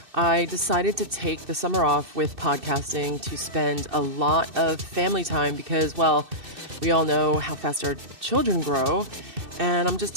I decided to take the summer off with podcasting to spend a lot of family time because, well, we all know how fast our children grow, and I'm just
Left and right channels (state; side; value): late; left; 2.6 ms